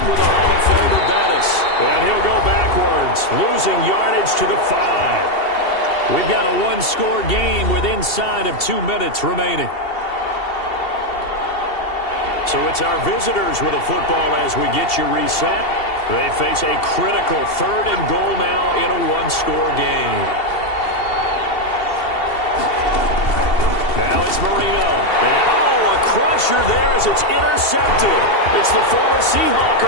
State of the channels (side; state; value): right; late; 2.7 ms